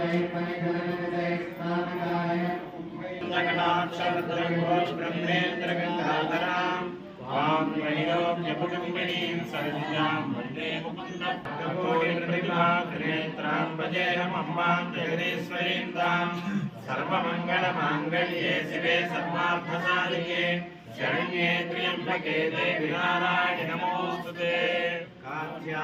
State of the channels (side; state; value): both; identical; correlation 1.00